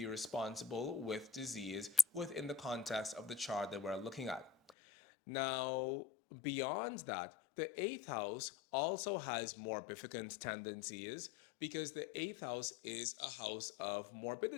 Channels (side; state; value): right; drops out; at 4.8 s